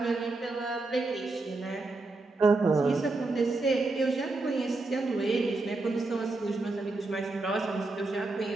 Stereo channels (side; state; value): left; quieter; 3.3 dB